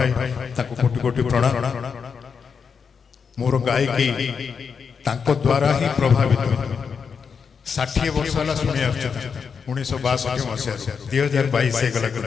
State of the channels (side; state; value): right; quieter; 6.1 dB